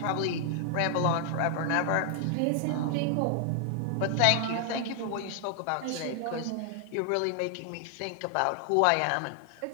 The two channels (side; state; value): both; different; correlation 0.00